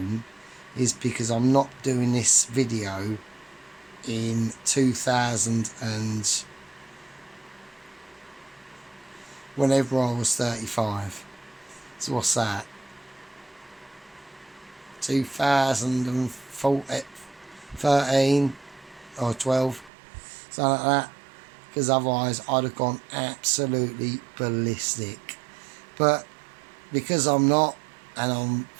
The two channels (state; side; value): drops out; left; at 19.9 s